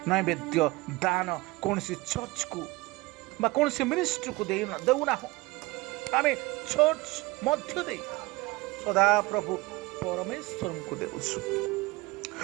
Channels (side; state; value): left; quieter; 21.7 dB